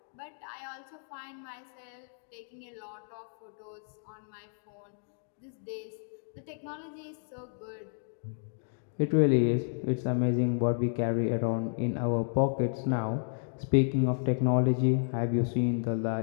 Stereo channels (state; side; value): silent; right; digital silence